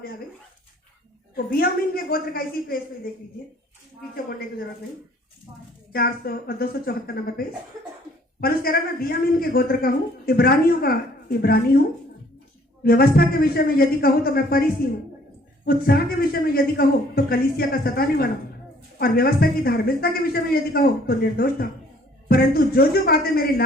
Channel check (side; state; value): both; normal; correlation 0.59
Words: आ गई। तो बियामीन के गोत्र का इसी पेज पे देख लीजिए, पीछे पढ़ने की जरूरत नहीं। 274 नंबर पेज। पौलुस कह रहा है, मैं बियामीन के गोत्र का हूँ, इब्रानियों का इब्रानी हूँ। व्यवस्था के विषय में यदि कहूँ तो मैं फरीसी हूँ। उत्साह के विषय में यदि कहो तो कलीसिया का सताने वाला, और व्यवस्था की धार्मिकता के विषय में यदि कहो तो निर्दोष था। परंतु जो बातें मेरे